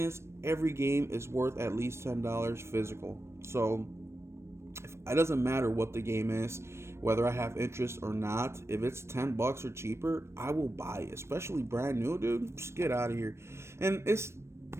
every game is worth at least $10 physical. So it doesn't matter what the game is, whether I have interest or not. If it's $10 or cheaper, I will buy it, especially brand new, dude. Just get out of here. And it's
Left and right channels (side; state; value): left; late; 0.13 ms